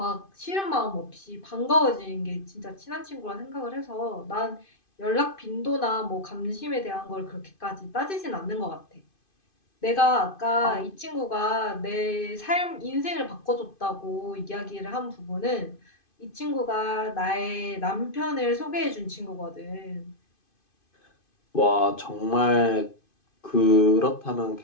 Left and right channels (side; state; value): right; late; 2.5 ms